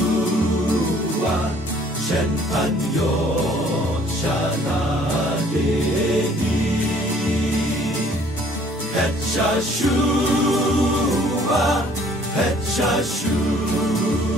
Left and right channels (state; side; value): normal; both; correlation 0.57